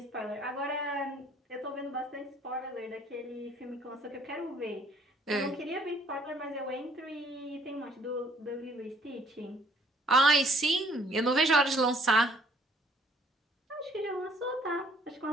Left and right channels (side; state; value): both; normal; correlation 0.61